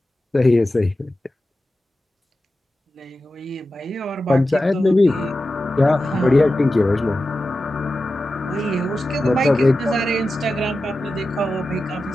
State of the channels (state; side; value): normal; both; correlation 0.93